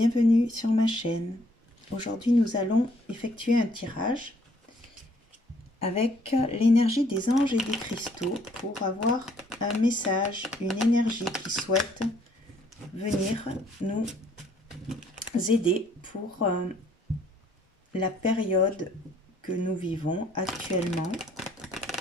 sur ma chaîne. Aujourd'hui, nous allons effectuer un tirage avec l'énergie des anges et des cristaux pour avoir un message, une énergie qui souhaite venir nous aider pour la période que nous vivons actuellement.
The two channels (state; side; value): normal; both; correlation 0.64